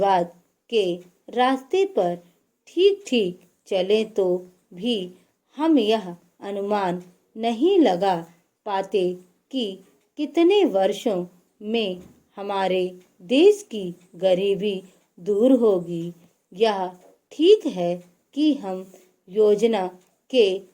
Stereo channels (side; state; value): both; identical; correlation 1.00